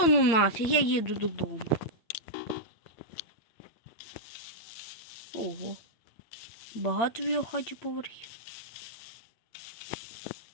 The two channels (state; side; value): late; right; 8.8 ms